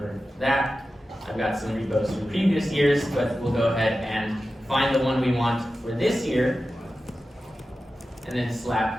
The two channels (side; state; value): both; normal; correlation 0.93